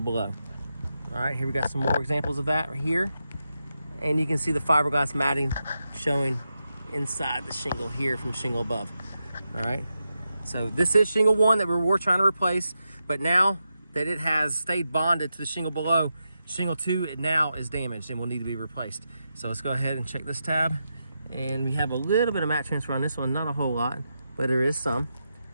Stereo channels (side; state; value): both; inverted; correlation -0.87